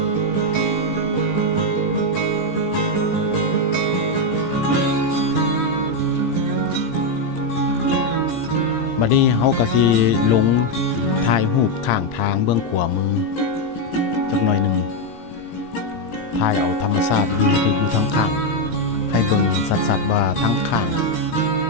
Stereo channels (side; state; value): right; late; 17 ms